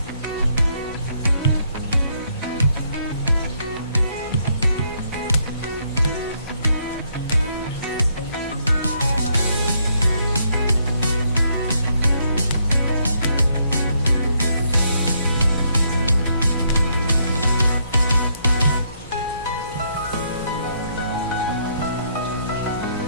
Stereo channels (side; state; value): both; inverted; correlation -0.73